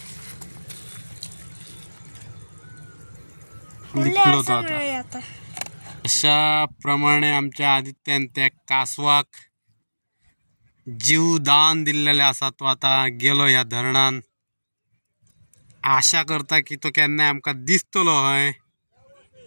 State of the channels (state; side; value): inverted; both; correlation -1.00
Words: लिपलो तो आता अशा प्रमाणे आमच्या आदित्यान त्या कासवाक जीवदान दिल्लेले आसा तो आता गेलो ह्या धरणान आशा करता की तो केन्नाय आमकां दिसतलो हय